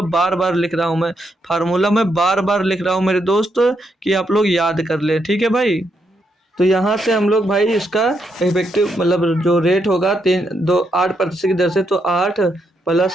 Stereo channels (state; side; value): normal; both; correlation 0.79